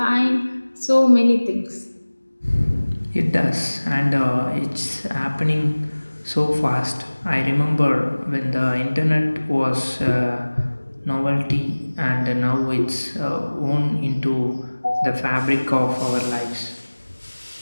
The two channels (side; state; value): both; inverted; correlation -1.00